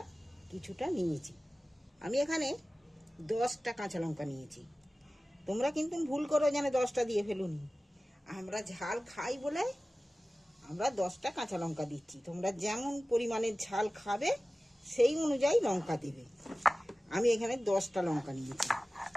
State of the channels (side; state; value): both; normal; correlation 0.96